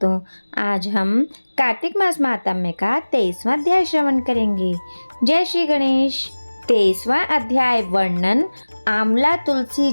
आज हम कार्तिक मास महात्म्य का 23वां अध्याय श्रवण करेंगे। जय श्री गणेश। 23वां अध्याय वर्णन आंवला तुलसी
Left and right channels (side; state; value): both; inverted; correlation -1.00